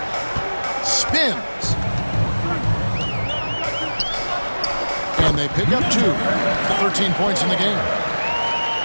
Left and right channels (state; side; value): inverted; both; correlation -1.00